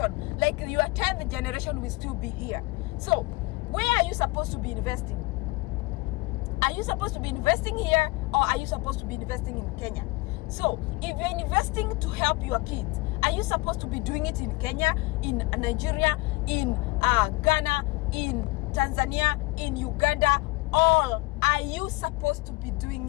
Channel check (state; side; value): quieter; right; 22.8 dB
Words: like your 10th generation, will still be here. So where are you supposed to be investing? Are you supposed to be investing here, or are you supposed to be investing in Kenya? So if you're investing to help your kids, are you supposed to be doing it in Kenya, in Nigeria, in Ghana, in Tanzania, in Uganda, or are you supposed to be